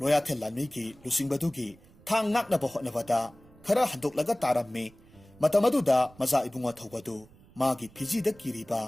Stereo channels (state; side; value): noise; right; rumble, 26 dB below the sound